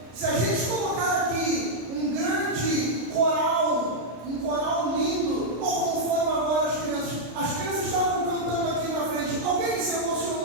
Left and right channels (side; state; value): left; late; 33 ms